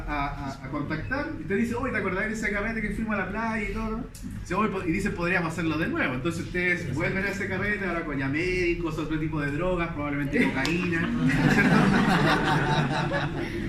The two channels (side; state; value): both; identical; correlation 1.00